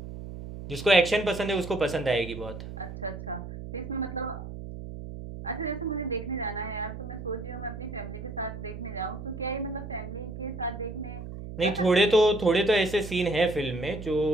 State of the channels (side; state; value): right; noise; hum, 10 dB below the sound